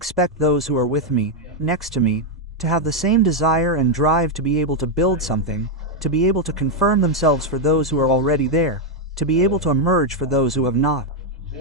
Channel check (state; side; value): normal; both; correlation 0.01